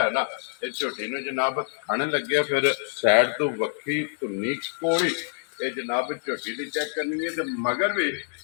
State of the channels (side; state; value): right; silent; digital silence